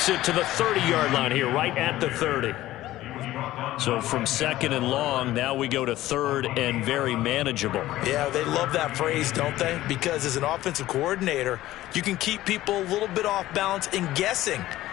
it to the 30-yard line here, right at the 30. So from 2nd and long, now we go to 3rd and very manageable. Yeah, they love that phrase, don't they? Because as an offensive coordinator, you can keep people a little bit off balance and guessing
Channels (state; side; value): quieter; right; 15.5 dB